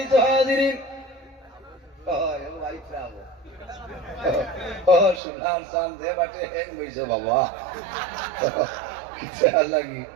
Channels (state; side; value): drops out; left; at 5.2 s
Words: হাজিরিন, সোনার চান দে বাটে হেক লইছে বাবা, লাগি